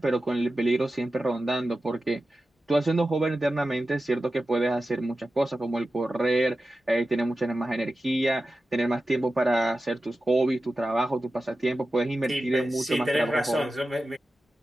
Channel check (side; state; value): both; normal; correlation 0.93